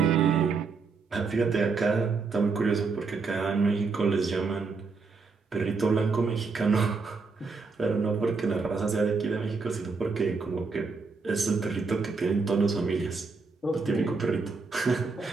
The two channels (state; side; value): quieter; left; 4.5 dB